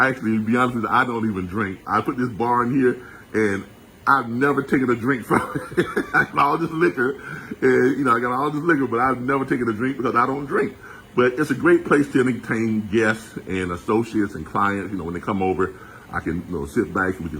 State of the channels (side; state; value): both; identical; correlation 1.00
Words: actually, to be honest with you, I don't even drink. I put this bar in here, and I've never taken a drink from it. I got all this liquor, and I got all this liquor, but I've never taken a drink because I don't drink. But it's a great place to entertain guests and associates and clients. When they come over, I can sit back and we